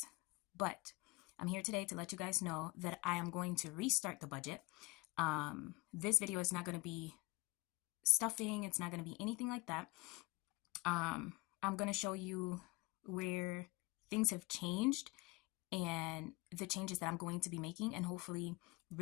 But I'm here today to let you guys know that I am going to restart the budget. This video is not going to be stuffing, it's not going to be anything like that. I'm going to show you where things have changed and the changes that I'm going to be making. And hopefully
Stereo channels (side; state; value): right; quieter; 24.8 dB